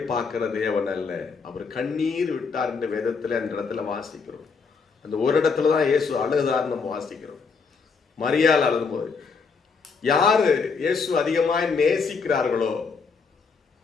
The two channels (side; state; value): right; quieter; 5.1 dB